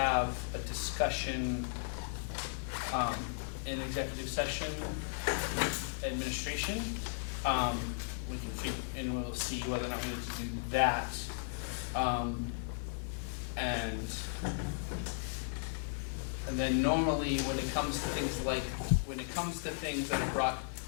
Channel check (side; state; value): right; silent; 54 dB below the other